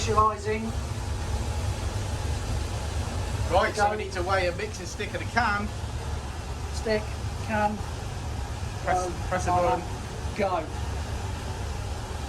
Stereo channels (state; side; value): identical; both; correlation 1.00